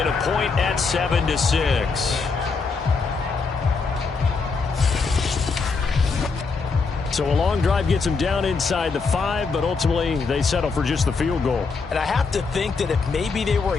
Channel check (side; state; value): right; quieter; 4.6 dB